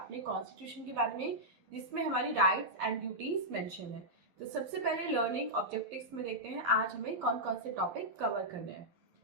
कॉन्स्टिट्यूशन के बारे में, जिसमें हमारी राइट्स एंड ड्यूटीज मेंशन है। तो सबसे पहले लर्निंग ऑब्जेक्टिव्स में देखते हैं आज हमें कौन कौन से टॉपिक कवर करने हैं।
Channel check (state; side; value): late; left; 11 ms